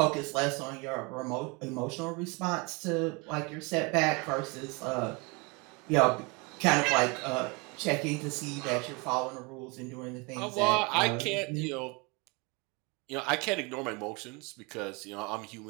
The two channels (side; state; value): left; quieter; 28.9 dB